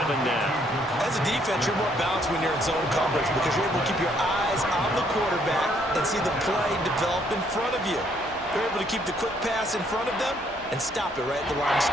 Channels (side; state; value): both; normal; correlation 0.68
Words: now. As a defense, you're more balanced when you're in zone coverage because you're able to keep your eyes on the quarterback and see the play develop in front of you. You're able to keep the quick pass in front of them and stop it right at the line of